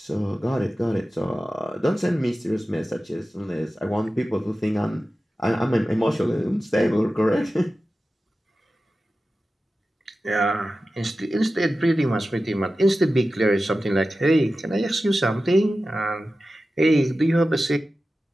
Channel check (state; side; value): normal; both; correlation 0.94